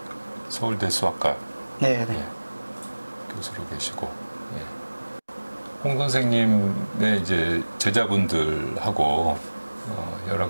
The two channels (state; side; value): inverted; both; correlation -1.00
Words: 서울대 수학과 네, 네. 예, 교수로 계시고, 예. 홍 선생님의 이제 제자분들하고 여러